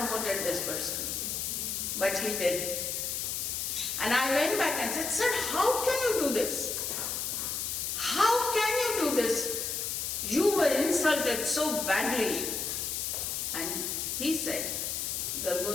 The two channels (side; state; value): left; noise; hiss, 2 dB below the sound